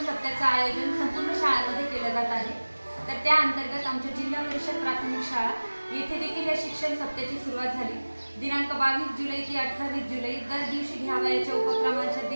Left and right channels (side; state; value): both; inverted; correlation -1.00